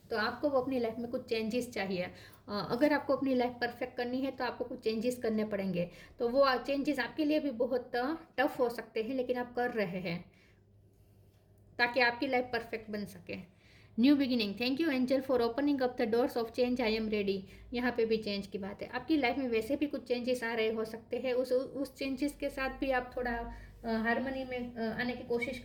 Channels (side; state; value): both; identical; correlation 1.00